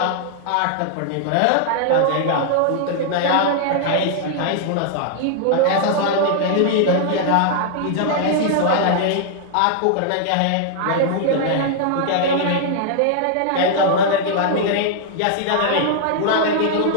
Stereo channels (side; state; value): both; different; correlation -0.01